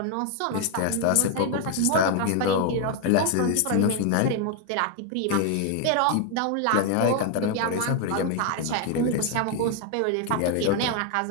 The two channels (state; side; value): different; both; correlation 0.01